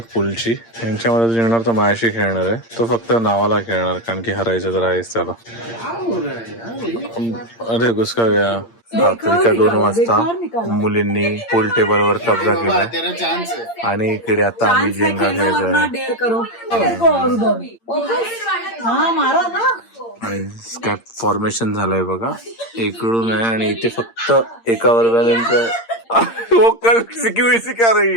पूलची। यांच्यामध्ये जिंकणार तर माझ्याशी खेळणार आहे, तो फक्त नावाला खेळणार कारण की हरायचं तर आहेच त्याला। अरे घुसका गया। रात्रीच्या 2 वाजता मुलींनी पूल टेबलवर कब्जा केला तेरा चांस है। आणि इकडे आता आम्ही जेंगा खेळतोय आणि काय फॉर्मेशन झालंय बघा, इकडून आहे आणि इथे फक्त एका वर्गानंतर वो कल सिक्योरिटी सिखा रही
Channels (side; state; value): right; late; 8.7 ms